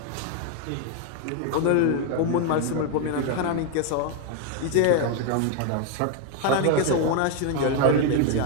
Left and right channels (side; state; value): both; different; correlation 0.00